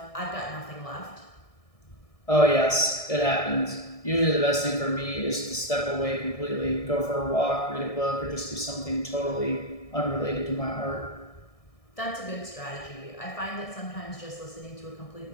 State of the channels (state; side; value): late; right; 1.6 ms